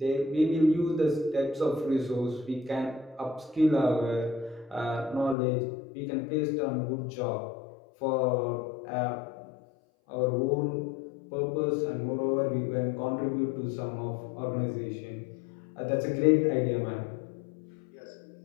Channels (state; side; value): drops out; right; at 5.4 s